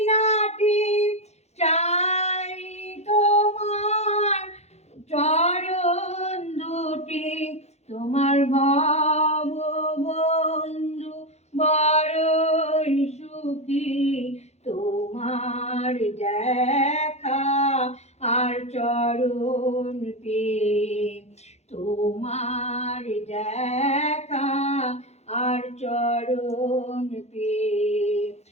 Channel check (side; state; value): right; late; 0.32 ms